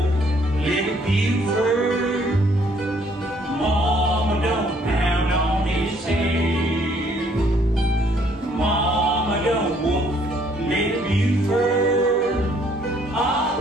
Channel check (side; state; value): both; normal; correlation 0.64